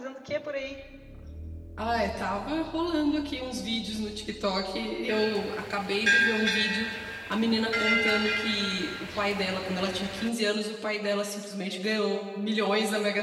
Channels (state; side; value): identical; both; correlation 1.00